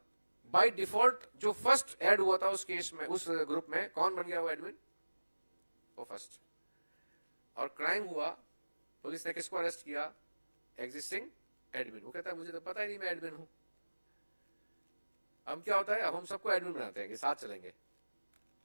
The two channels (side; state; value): both; inverted; correlation -1.00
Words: बाय डिफॉल्ट जो फर्स्ट ऐड हुआ था उस केस में, उस ग्रुप में, कौन बन गया वो एडमिन? वो फर्स्ट. और क्राइम हुआ, पुलिस ने किसको अरेस्ट किया? Existing admin. वो कहता है मुझे तो पता ही नहीं मैं एडमिन हूं. अब क्या होता है, अब हम सबको एडमिन बनाते हैं कि साथ चलेंगे.